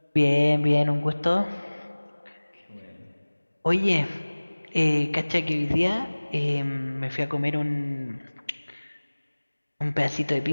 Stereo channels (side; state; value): both; inverted; correlation -1.00